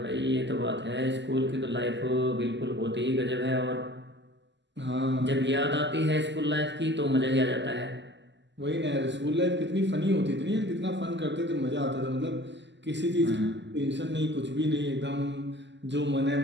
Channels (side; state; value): left; late; 0.52 ms